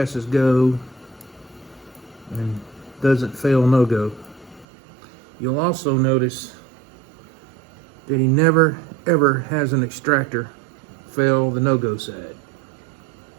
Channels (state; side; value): drops out; left; at 4.7 s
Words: go and doesn't fail no go. You'll also notice that he never ever has an extractor fail the no-go side.